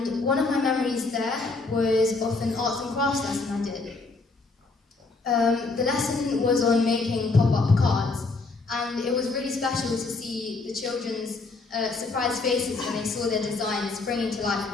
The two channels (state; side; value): quieter; right; 3.8 dB